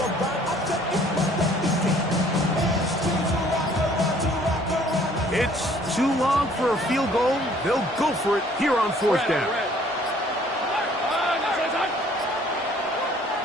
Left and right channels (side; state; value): both; normal; correlation 0.58